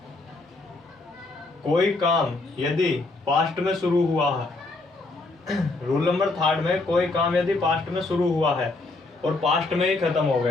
कोई काम यदि पास्ट में शुरू हुआ है रूल नंबर 3 में कोई काम यदि पास्ट में शुरू हुआ है और पास्ट में ही खत्म हो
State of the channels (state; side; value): quieter; right; 3.2 dB